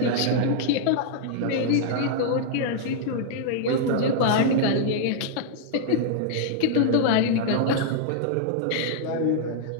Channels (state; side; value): different; both; correlation -0.01